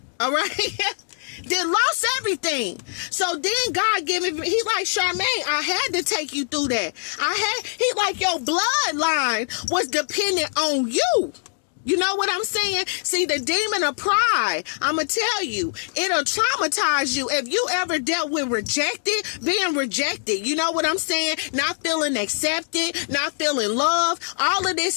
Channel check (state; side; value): silent; right; digital silence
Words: All right. Then lost everything. So then God gave me, he like, Charmaine, I had to take you through that. He like, your bloodline was dependent on you. You know what I'm saying? See, the demon of pride, I'm going to tell you, it'll traumatize you. If you ever dealt with being rejected, you know what I'm saying? Not feeling accepted, not feeling loved, all of this